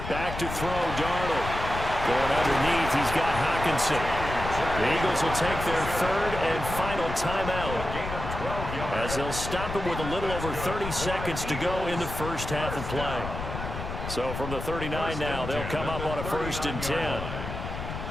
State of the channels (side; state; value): left; noise; rumble, 7 dB below the sound